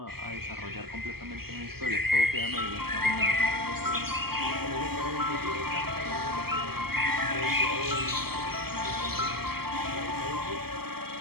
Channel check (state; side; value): late; left; 0.95 ms